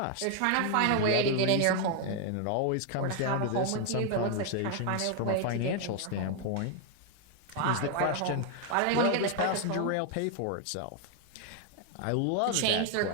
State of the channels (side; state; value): both; different; correlation 0.00